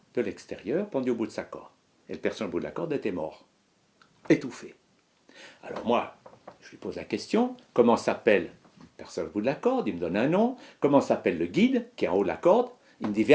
de l'extérieur pendu au bout de sa corde. Et le personnage au bout de la corde était mort, étouffé. Alors moi, je lui pose la question, comment s'appelle le personnage au bout de la corde? Il me donne un nom. Comment s'appelle le guide qui est en haut de la corde? Il me dit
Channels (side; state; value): both; identical; correlation 1.00